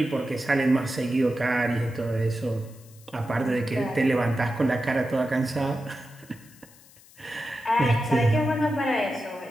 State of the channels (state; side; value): noise; left; hiss, 25 dB below the sound